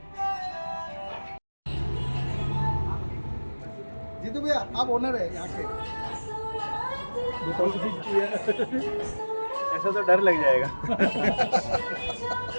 जीतू भैया आप ओनर है यहाँ के। ऐसा तो डर लग जाएगा।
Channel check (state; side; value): inverted; both; correlation -1.00